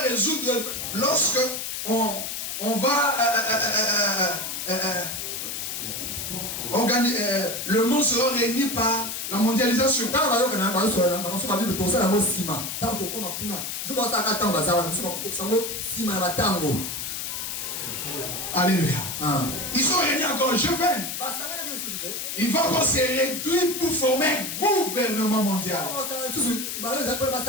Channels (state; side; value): noise; left; hiss, 5 dB below the sound